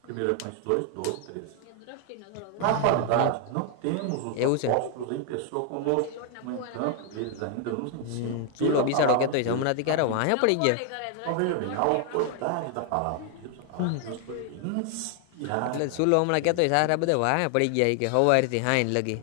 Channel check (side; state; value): both; different; correlation 0.00